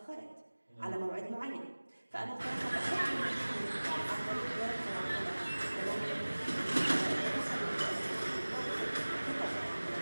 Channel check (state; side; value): inverted; both; correlation -1.00